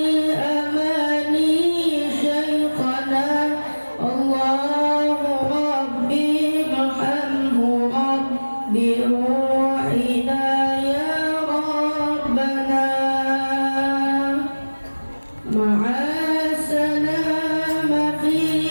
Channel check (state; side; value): inverted; both; correlation -1.00